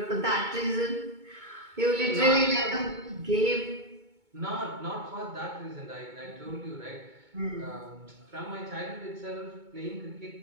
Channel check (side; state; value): left; late; 2.2 ms